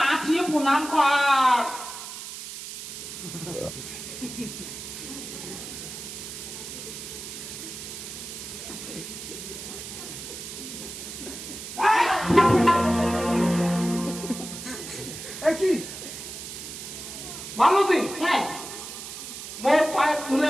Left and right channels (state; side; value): noise; right; hiss, 10 dB below the sound